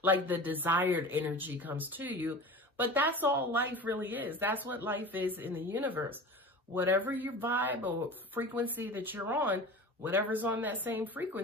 like the desired energy comes to you, but that's all life really is. That's what life is in the universe. Whatever your vibe or frequency that you're on, whatever's on that same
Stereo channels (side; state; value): both; normal; correlation 0.34